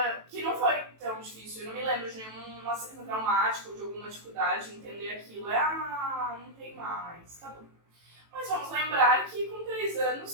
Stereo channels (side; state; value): left; late; 18 ms